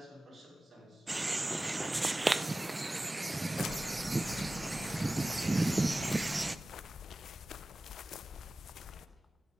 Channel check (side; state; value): both; normal; correlation 0.96